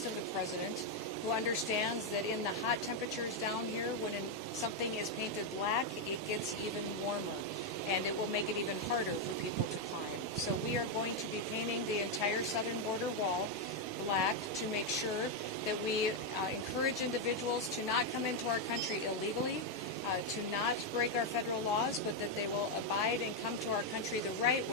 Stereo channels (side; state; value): both; normal; correlation 0.02